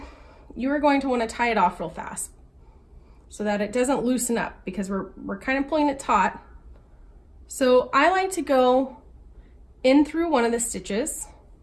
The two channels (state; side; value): identical; both; correlation 1.00